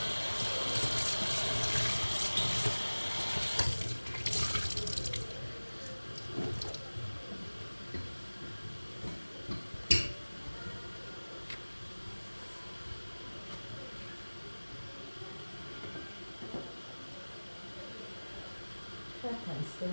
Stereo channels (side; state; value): both; inverted; correlation -1.00